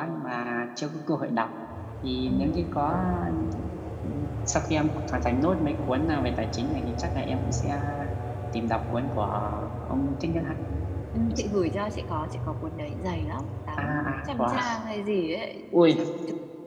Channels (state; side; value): identical; both; correlation 1.00